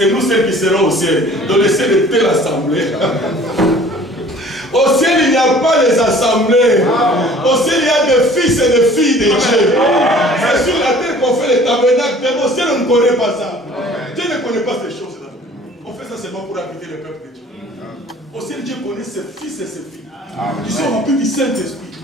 nous seuls qui serons au ciel. Donc le ciel est telle assemblée. Au ciel, il n'y a pas les assemblées. Au ciel, il y a des fils et des filles de Dieu. C'est sur la terre qu'on fait les tabernacles. Au ciel, on ne connaît pas ça. Dieu ne connaît pas ces choses-là. On fait ça seulement pour habiter le peuple de Dieu. Au ciel, Dieu connaît ses fils et ses filles. Ils sont remplis du Saint-Esprit.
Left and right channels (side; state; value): both; normal; correlation 0.50